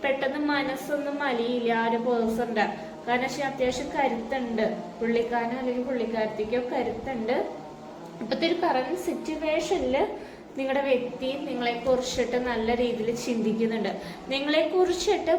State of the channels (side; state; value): both; identical; correlation 1.00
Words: പെട്ടെന്ന് മനസ്സൊന്നും അലിയില്ല ആ ഒരു പേഴ്സന്റെ. കാരണം വെച്ചാൽ അത്യാവശ്യം കരുത്തുണ്ട്. പുള്ളിക്കാരനോ അല്ലെങ്കിൽ പുള്ളിക്കാരത്തേക്കോ കരുത്തുണ്ട്. ഇപ്പോഴത്തെ ഒരു കറന്റ് സിറ്റുവേഷനിൽ നിങ്ങളുടെ വ്യക്തി നിങ്ങളെ കുറിച്ചിട്ട് നല്ല രീതിയിൽ ചിന്തിക്കുന്നുണ്ട്. നിങ്ങളെ കുറിച്ചിട്ട്